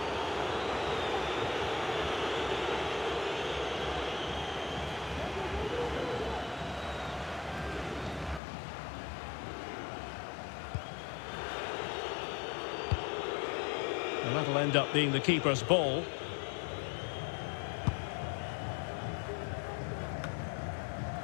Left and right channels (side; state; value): right; drops out; at 8.4 s